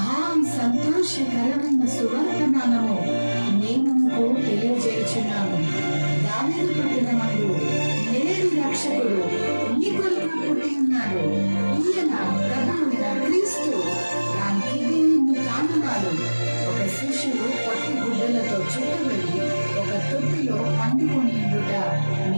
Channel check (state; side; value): inverted; both; correlation -1.00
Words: సంతోషకరమైన సువర్తమానము నేను మీకు తెలియజేయుచున్నాను. దావీదు పట్టణమందు నేడు రక్షకుడు మీ కొరకు పుట్టి ఉన్నాడు. ఈయన ప్రభువైన క్రీస్తు. దానికి మీ కానువాడు ఒక శిశువు పత్తి గుడ్డలతో చుట్టబడి ఒక తొట్టిలో పండుకొని ఉండుట